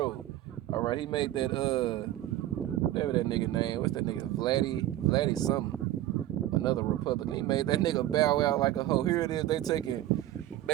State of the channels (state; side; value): quieter; left; 14.1 dB